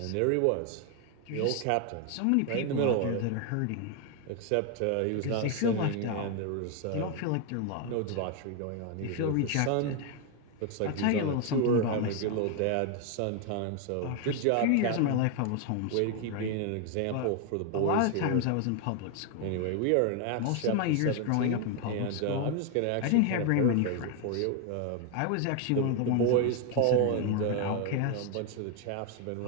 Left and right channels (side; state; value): both; different; correlation 0.01